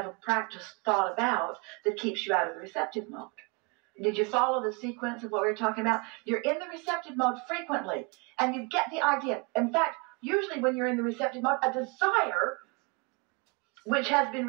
a practiced thought about that keeps you out of the receptive mode. Did you follow the sequence of what we were talking about? You're in the receptive mode frequently, and you get the idea. In fact, usually when you're in the receptive mode, a desire which has been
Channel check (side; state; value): left; quieter; 31.0 dB